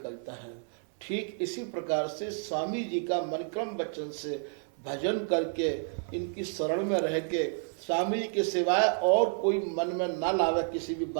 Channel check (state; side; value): silent; left; 57 dB below the other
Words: है। ठीक इसी प्रकार से स्वामी जी का मनक्रम वचन से भजन करके, इनकी शरण में रह के, स्वामी जी के सिवाय और कोई मन में ना लावे किसी भी